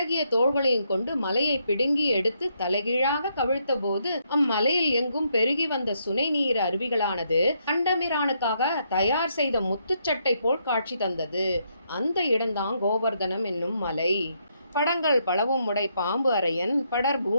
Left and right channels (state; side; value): inverted; both; correlation -0.76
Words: தோள்களையும் கொண்டு மலையை பிடுங்கி எடுத்து தலைகீழாக கவிழ்த்த போது அம்மலையில் எங்கும் பெருகி வந்த சுனை நீர் அருவிகளானது கண்டமிரானுக்காக தயார் செய்த முத்துச்சட்டை போல் காட்சி தந்தது. அந்த இடம்தான் கோவர்தனம் என்னும் மலை. படங்கள் பலவும் உடை பாம்பு அரையன் படர்